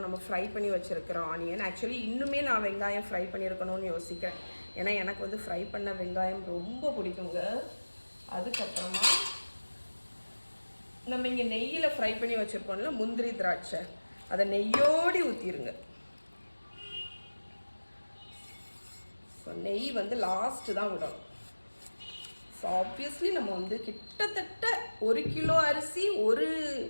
நம்ம ஃப்ரை பண்ணி வச்சுருக்கிற ஆனியன். ஆக்சுவலி இன்னுமே நான் வெங்காயம் ஃப்ரை பண்ணியிருக்கணும்னு யோசிக்கிறேன். ஏன்னா எனக்கு வந்து ஃப்ரை பண்ண வெங்காயம் ரொம்ப பிடிக்குங்க. அதுக்கப்புறமா நம்ம இங்கே நெய்யில் ஃப்ரை பண்ணி வச்சுருக்கோம்ல முந்திரி திராட்சை, அதை நெய்யோடி ஊற்றிடுங்க. ஸோ நெய் வந்து லாஸ்ட்டு தான் விடணும். ஸோ ஆப்வியஸ்லி நம்ம வந்து கிட்டத்தட்ட 1 கிலோ அரிசி,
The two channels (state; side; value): inverted; both; correlation -1.00